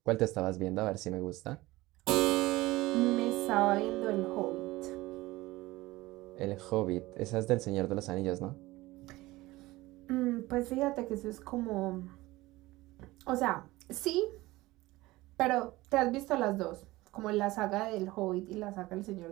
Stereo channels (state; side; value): quieter; left; 19.2 dB